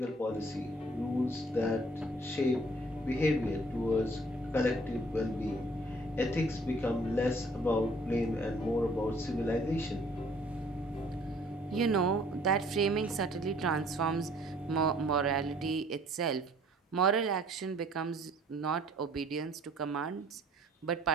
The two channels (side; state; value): both; normal; correlation 0.57